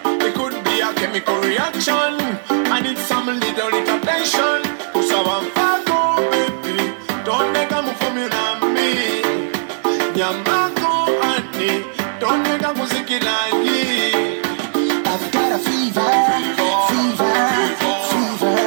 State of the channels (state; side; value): silent; left; digital silence